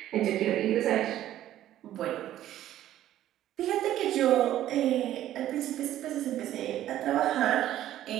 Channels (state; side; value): quieter; left; 12.8 dB